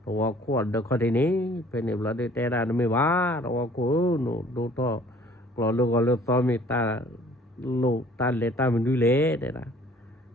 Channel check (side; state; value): both; normal; correlation 0.54